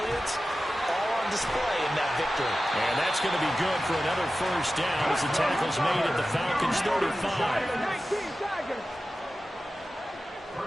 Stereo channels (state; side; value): normal; both; correlation 0.94